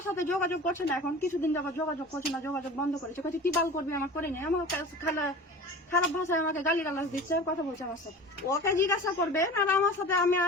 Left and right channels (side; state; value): both; normal; correlation 0.37